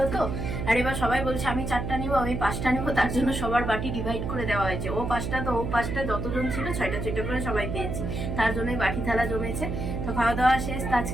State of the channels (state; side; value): noise; right; hum, 4 dB below the sound